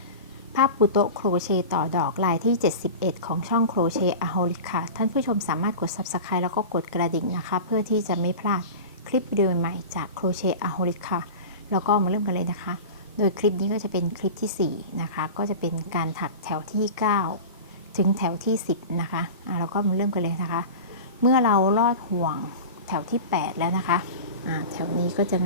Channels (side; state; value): both; inverted; correlation -0.31